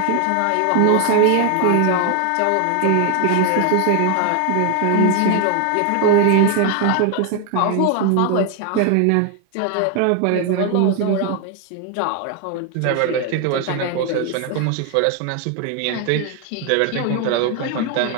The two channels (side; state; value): both; different; correlation 0.00